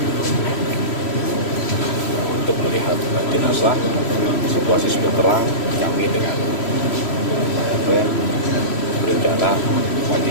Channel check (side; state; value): right; late; 3.1 ms